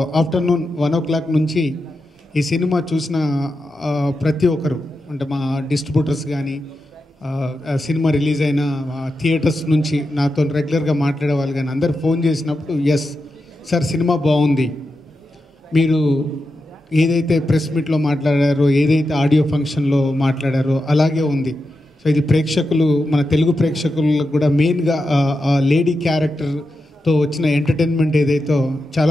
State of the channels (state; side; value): normal; both; correlation 0.89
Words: ఆఫ్టర్నూన్ 1 o'clock నుంచి ఈ సినిమా చూసిన ప్రతి ఒక్కరు, అంటే మా డిస్ట్రిబ్యూటర్స్ కానీ, సినిమా రిలీజ్ అయిన థియేటర్స్ నుంచి నాతో రెగ్యులర్గా మాట్లాడే వాళ్ళు కానీ అందరు ఫోన్ చేసినప్పుడు, ఎస్ సార్ సినిమా బాగుంది, మీరు ఏదైతే ప్రెస్ మీట్లో మాట్లాడారో, ఏదైతే ఆడియో ఫంక్షన్లో మాట్లాడారో అలాగే ఉంది. సో ఇది ప్రేక్షకులు, మన తెలుగు ప్రేక్షకులకు కూడా మెయిన్గా లేడీ క్యారెక్టర్తో వచ్చిన ఎంటర్టైన్మెంట్ ఏదైతే